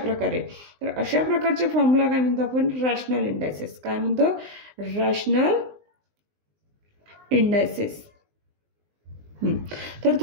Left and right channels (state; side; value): late; left; 19 ms